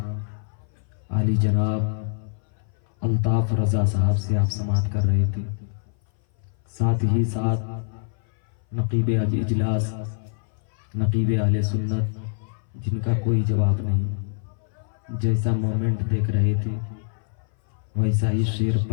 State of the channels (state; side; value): silent; right; 58 dB below the other